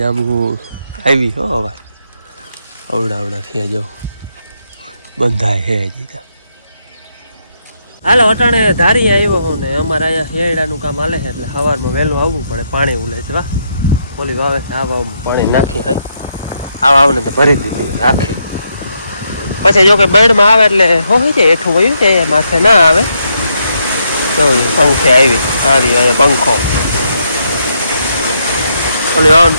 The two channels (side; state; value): both; inverted; correlation -0.78